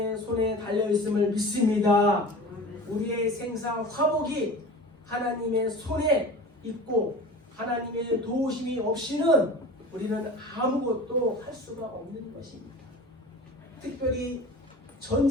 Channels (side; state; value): both; normal; correlation 0.37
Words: 손에 달려있음을 믿습니다. 우리의 생사 화복이 하나님의 손에 있고 하나님의 도우심이 없이는 우리는 아무것도 할 수가 없는 것입니다. 특별히